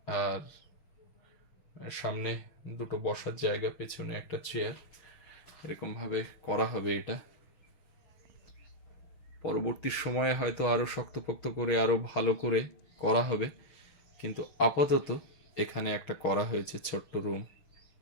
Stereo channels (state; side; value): late; right; 6.4 ms